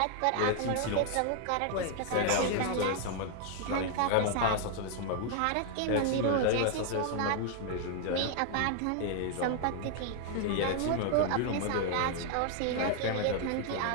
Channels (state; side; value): different; both; correlation 0.00